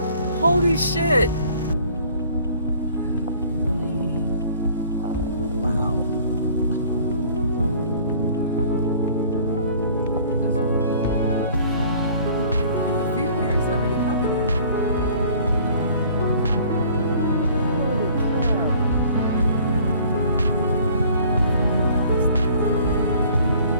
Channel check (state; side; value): inverted; both; correlation -0.53